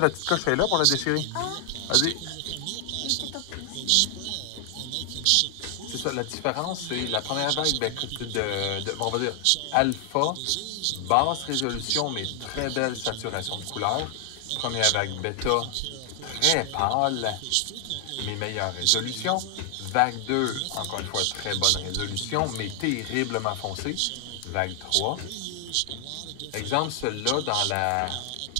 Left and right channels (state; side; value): different; both; correlation 0.00